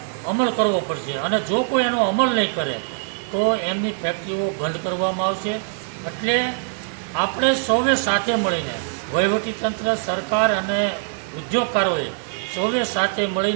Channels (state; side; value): silent; left; 63 dB below the other